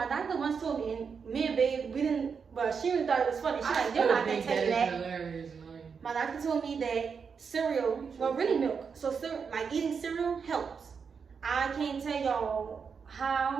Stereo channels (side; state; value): left; quieter; 6.0 dB